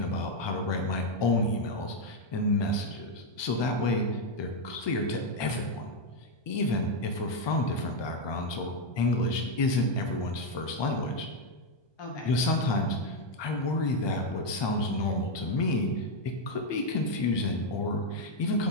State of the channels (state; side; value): late; right; 1.2 ms